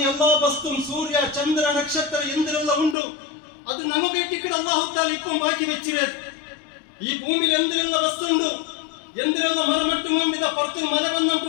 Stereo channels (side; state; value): right; drops out; at 3.0 s